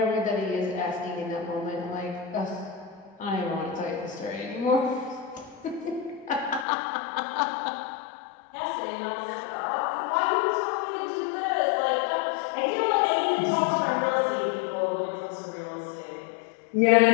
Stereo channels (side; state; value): right; drops out; at 6.7 s